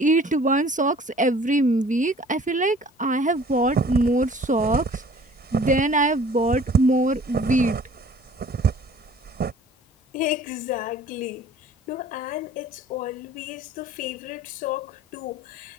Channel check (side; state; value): both; normal; correlation 0.50